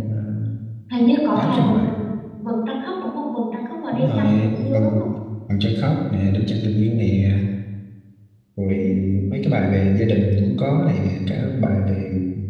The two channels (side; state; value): both; identical; correlation 1.00